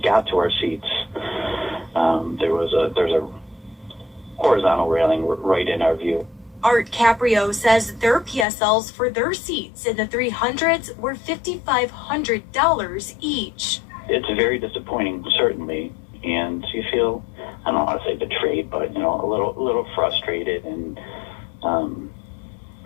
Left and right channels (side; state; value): right; drops out; at 8.5 s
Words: got to our seats, there's a horizontal railing right in our view. Art Caprio says their PSLs for their seats in the 300s were $5,500 each. It's very disappointing, certainly, and you feel, I don't want to say betrayed, but a little frustrated, and